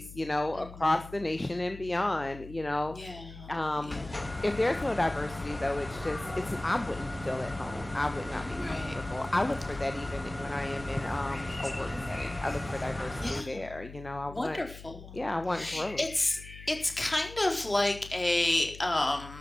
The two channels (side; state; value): left; noise; hum, 15 dB below the sound